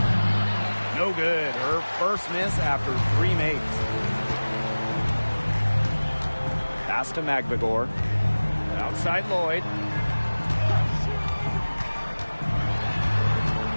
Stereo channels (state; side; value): inverted; both; correlation -1.00